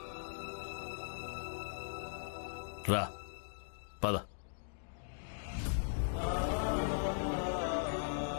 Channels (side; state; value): right; silent; digital silence